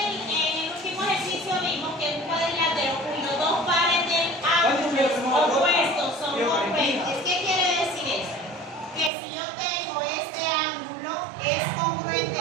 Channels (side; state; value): left; drops out; at 9.1 s